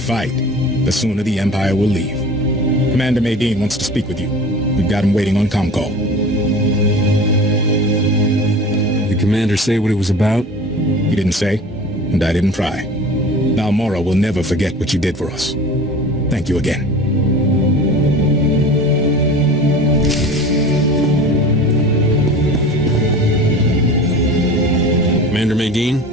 the sooner the Empire will leave. Commander Maydean wants to speak with you. We've got him waiting on comm call. The commander say what it was about? He didn't say, and I didn't pry. Balmorra will never forget what you did for us. Thank you again. Commander Maydean,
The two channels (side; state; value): both; normal; correlation 0.38